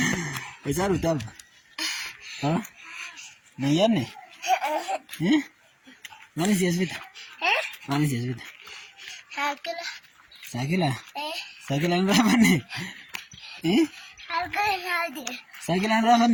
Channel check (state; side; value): identical; both; correlation 1.00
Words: Besar utab. Ha? Nayan ne? Mana sih asbita? Mana sih asbita? Sakila. Sakila? Sakilan berapa nih? Harga hadi. Sakilan berapa